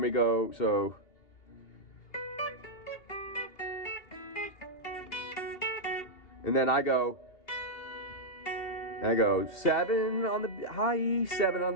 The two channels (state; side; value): late; right; 2.8 ms